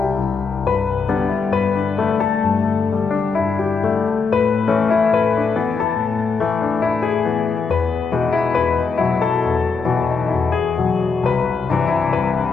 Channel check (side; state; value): right; quieter; 4.8 dB